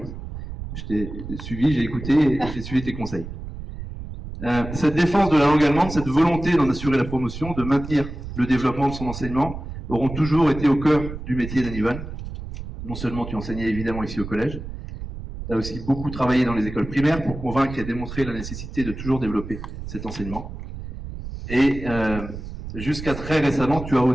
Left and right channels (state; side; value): noise; right; rumble, 9 dB below the sound